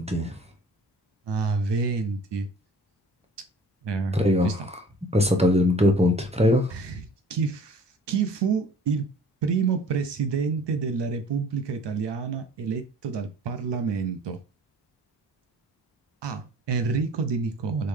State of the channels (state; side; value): normal; both; correlation 0.49